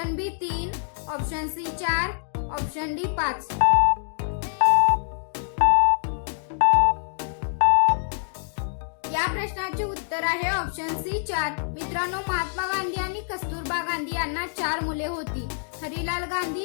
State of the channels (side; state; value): right; silent; digital silence